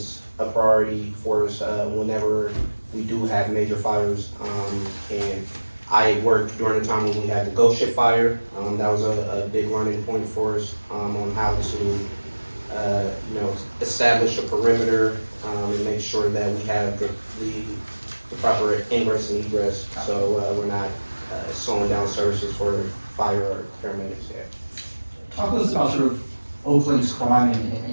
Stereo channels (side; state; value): both; inverted; correlation -1.00